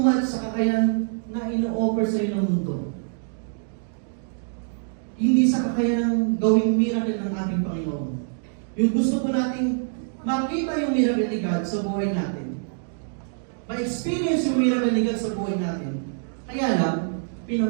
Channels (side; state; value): left; silent; digital silence